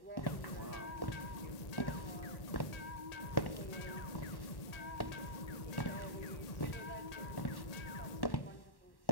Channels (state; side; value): late; right; 1.8 ms